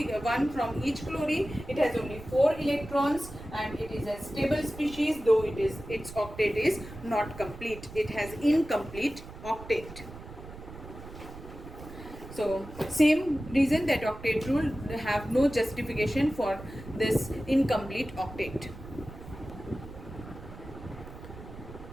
from each chlorine, it has only 4 electrons, and it is a stable species, though its octet is not complete. It has incomplete octet. So same reason that octet rule have no justification for this incomplete octet.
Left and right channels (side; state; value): right; noise; rumble, 14 dB below the sound